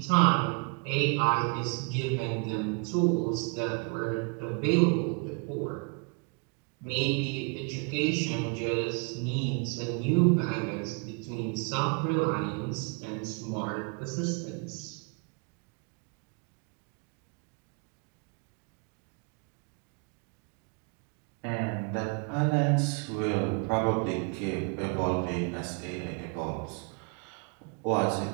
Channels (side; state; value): left; quieter; 35.4 dB